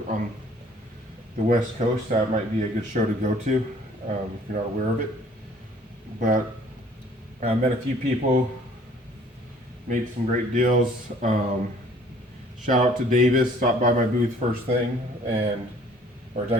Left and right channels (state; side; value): normal; both; correlation 0.56